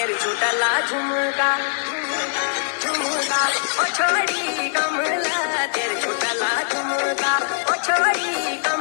छोटला झुमका झुमका ओ छोरी कमला तेरे छोटला झुमका ओ छोरी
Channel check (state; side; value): silent; right; digital silence